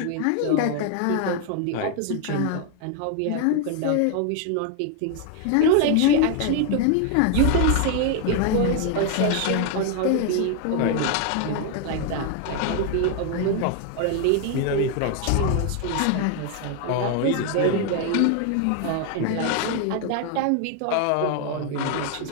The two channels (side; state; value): both; different; correlation 0.00